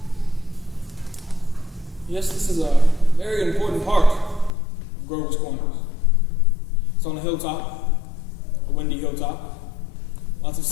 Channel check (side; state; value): right; drops out; at 4.5 s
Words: Yes, this is a very important part of Grover's Corners. It's on a hilltop, a windy hilltop. Lots of